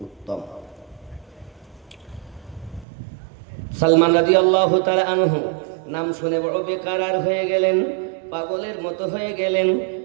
উত্তম। সালমান রাদিয়াল্লাহু তাআলা আনহু নাম শুনে বড় বেকারার হয়ে গেলেন, পাগলের মতো হয়ে গেলেন।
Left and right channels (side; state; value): left; drops out; at 2.9 s